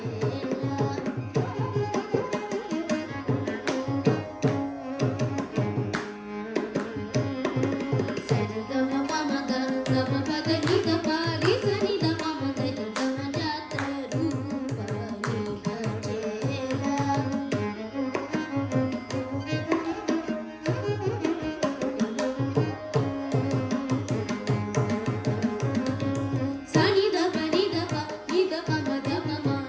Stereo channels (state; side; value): identical; both; correlation 1.00